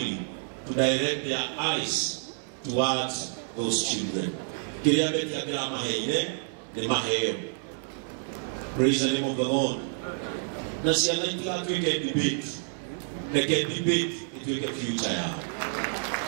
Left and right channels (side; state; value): left; silent; 59 dB below the other